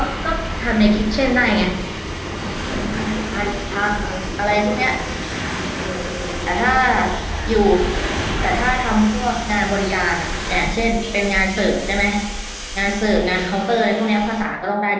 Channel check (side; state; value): both; identical; correlation 1.00